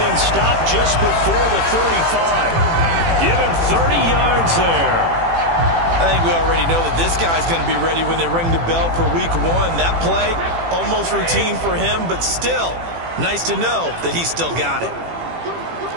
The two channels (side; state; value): left; late; 18 ms